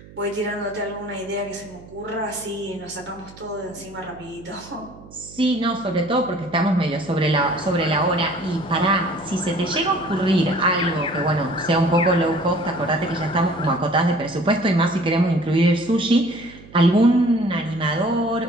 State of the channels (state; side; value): noise; right; hum, 20 dB below the sound